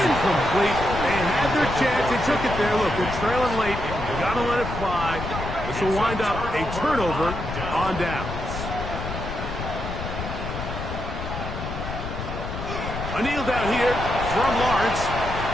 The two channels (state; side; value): noise; left; rumble, 6 dB below the sound